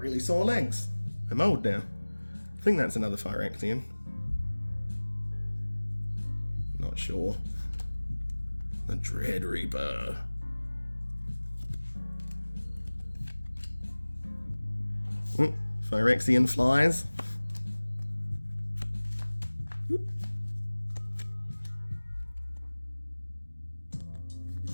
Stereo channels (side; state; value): both; inverted; correlation -1.00